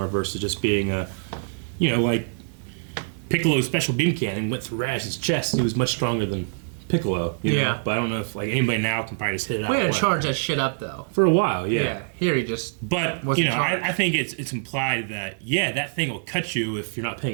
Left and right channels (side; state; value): left; silent; digital silence